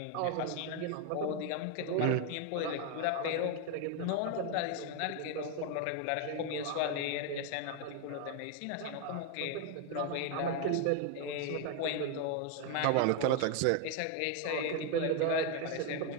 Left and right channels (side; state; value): both; different; correlation 0.01